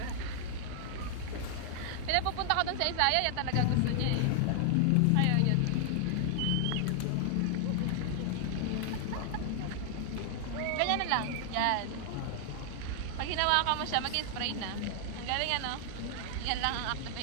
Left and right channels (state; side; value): different; both; correlation 0.00